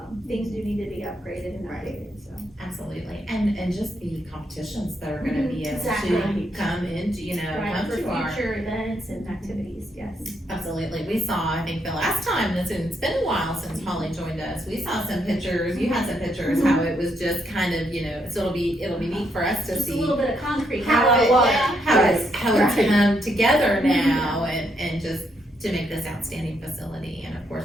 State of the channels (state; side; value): normal; both; correlation 0.77